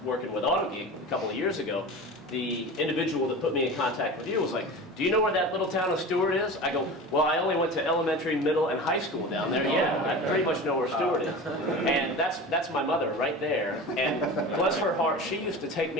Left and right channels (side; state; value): both; normal; correlation 0.32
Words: working with Autogeek a couple of years ago, the individual that put me in contact with you was like, "Do you know where that little town of Stuart is?" I go, "Well, I only went to elementary, middle, and high school down there. Yeah, I pretty much know where Stuart is." And that's my mother right there. And bless her heart, she used to take